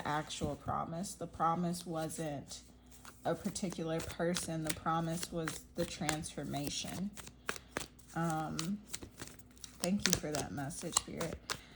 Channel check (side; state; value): both; identical; correlation 1.00